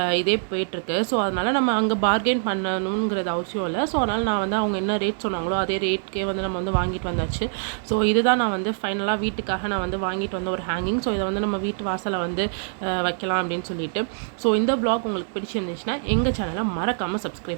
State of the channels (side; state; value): left; silent; digital silence